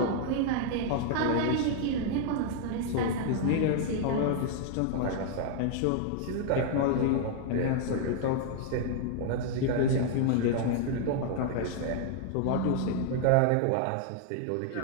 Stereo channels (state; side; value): different; both; correlation 0.00